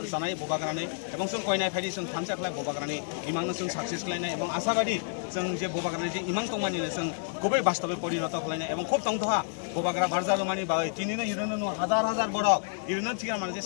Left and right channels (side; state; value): right; silent; 58 dB below the other